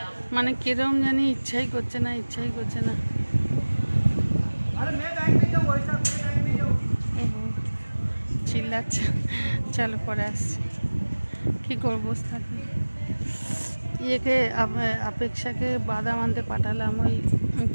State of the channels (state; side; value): inverted; both; correlation -1.00